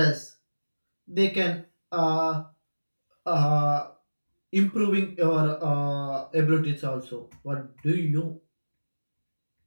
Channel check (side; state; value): both; inverted; correlation -1.00